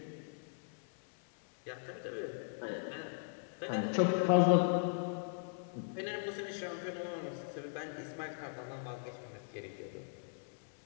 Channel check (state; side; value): silent; right; digital silence